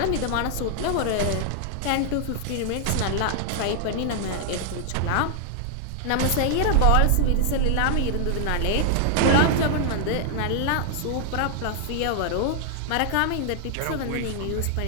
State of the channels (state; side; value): different; both; correlation 0.00